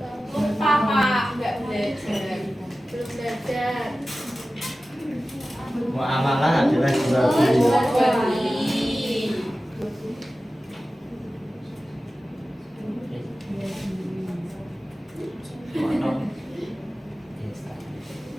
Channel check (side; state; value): both; normal; correlation 0.95